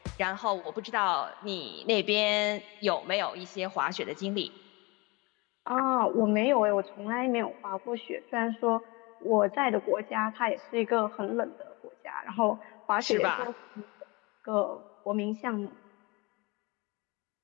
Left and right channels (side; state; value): right; quieter; 26.0 dB